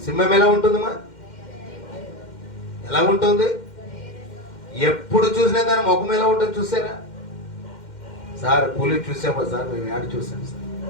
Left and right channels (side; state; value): right; late; 2.1 ms